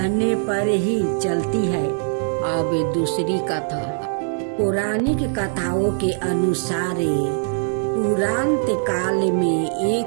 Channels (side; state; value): left; silent; 65 dB below the other